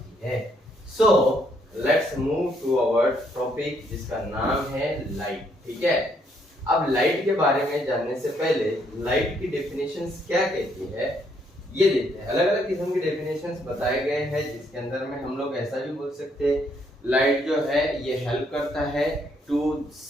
है। So let's move to our topic जिसका नाम है लाइट। ठीक है, अब लाइट के बारे में जानने से पहले लाइट की डेफिनेशंस क्या कहती है ये देखते हैं। अलग अलग किस्म की डेफिनेशंस बताए गए हैं, जिसके अंदर में हम लोग ऐसा भी बोल सकते हैं लाइट जो है ये हेल्प करता है टू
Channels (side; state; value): both; normal; correlation 0.71